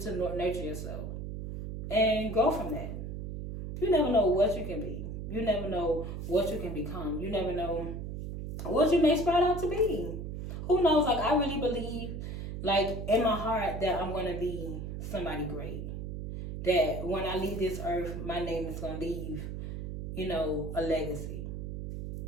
to nurture yourself. And grow from that. You never know what you can be. You never know what you can become. You never know what you may sprout out to be. Who knows? Like, I really believe, like, in my heart that I'm going to be somebody great. That when I leave this earth, my name is going to leave, a legacy.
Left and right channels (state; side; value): noise; right; hum, 6 dB below the sound